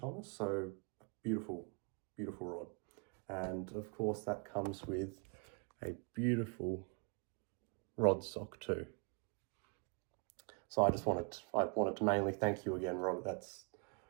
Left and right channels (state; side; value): quieter; left; 35.0 dB